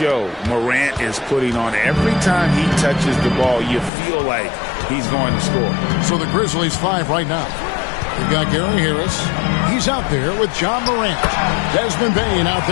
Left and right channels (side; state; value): right; drops out; at 3.9 s